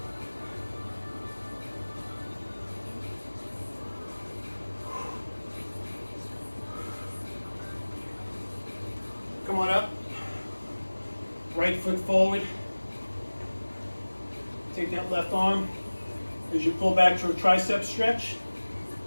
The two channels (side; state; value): both; inverted; correlation -1.00